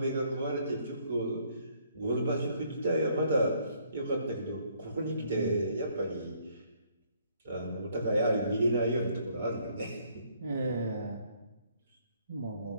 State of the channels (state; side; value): inverted; both; correlation -0.66